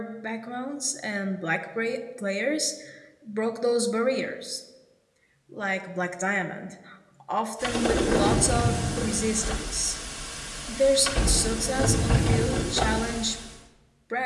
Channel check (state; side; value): identical; both; correlation 1.00